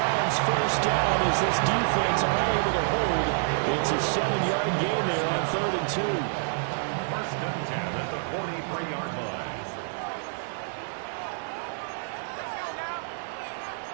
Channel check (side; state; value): left; silent; digital silence